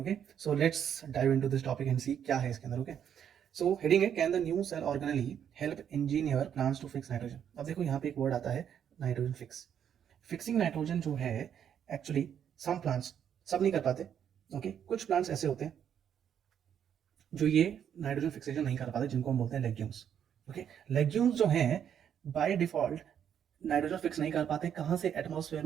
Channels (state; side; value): quieter; left; 8.9 dB